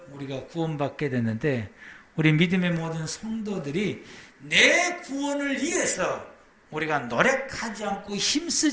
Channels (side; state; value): both; identical; correlation 1.00